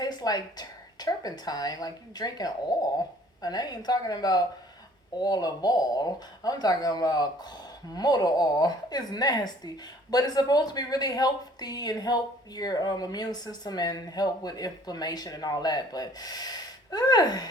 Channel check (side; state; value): both; normal; correlation 0.56